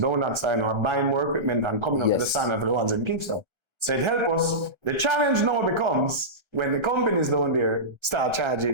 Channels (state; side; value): late; left; 1.3 ms